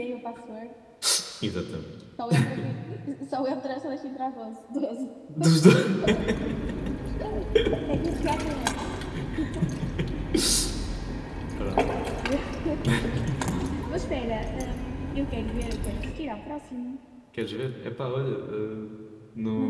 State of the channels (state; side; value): identical; both; correlation 1.00